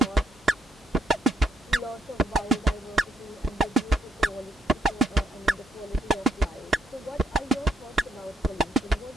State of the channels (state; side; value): normal; both; correlation 0.74